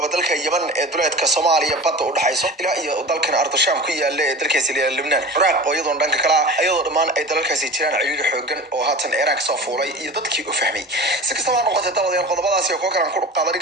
dalka Yemen ee duleedka Soomaaliya badda u dhaxayso ilaa iyo dalkan Ardasham ku yaala ee dalkaasi Lebanon Iraq oo iyadoo dhanka kala ayadoo dhamaan ay dalalkaasi jiraan ciriiri xoogan oo haatan Iran ka soo fuulay iyo dadkii u fahmay si kastaba noqotay dawada qodobadaasi oo kale aan ku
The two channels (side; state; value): both; normal; correlation 0.34